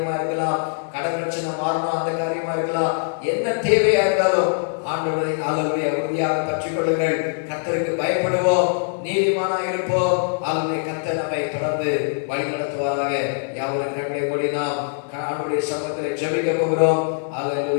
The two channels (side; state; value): right; silent; digital silence